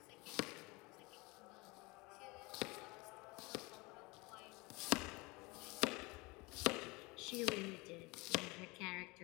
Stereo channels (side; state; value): right; quieter; 25.2 dB